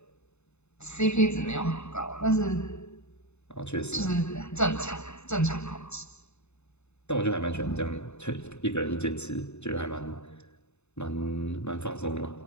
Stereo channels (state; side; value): late; right; 0.81 ms